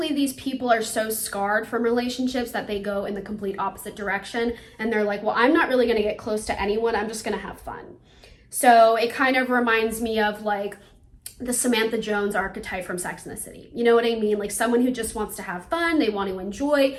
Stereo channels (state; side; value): identical; both; correlation 1.00